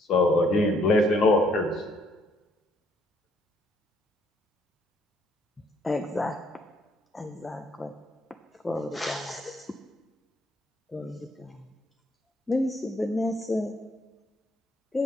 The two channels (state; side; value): normal; both; correlation 0.67